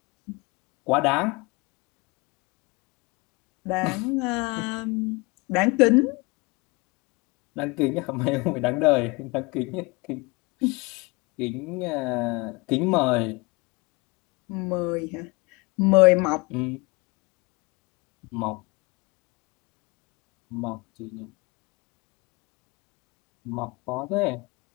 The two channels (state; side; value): quieter; right; 26.1 dB